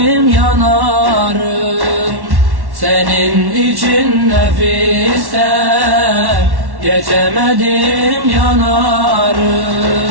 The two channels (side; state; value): left; late; 1.1 ms